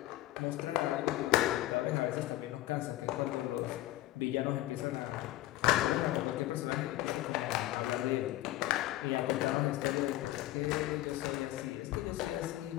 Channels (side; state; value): right; quieter; 15.9 dB